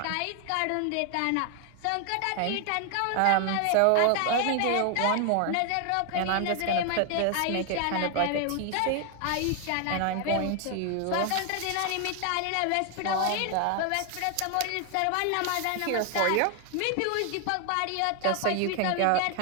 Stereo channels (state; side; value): different; both; correlation 0.00